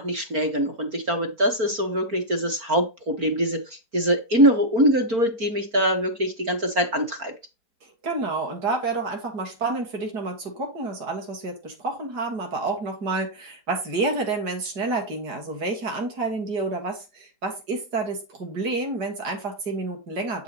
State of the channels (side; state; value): left; late; 4.4 ms